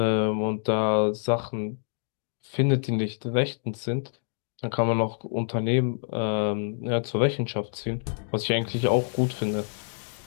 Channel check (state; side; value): silent; right; digital silence